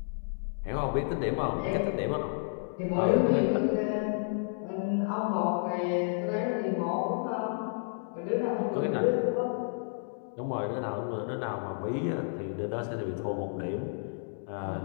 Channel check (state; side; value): silent; right; digital silence